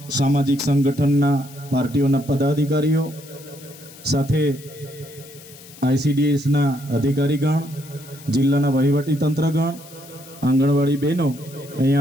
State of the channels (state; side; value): noise; left; hiss, 20 dB below the sound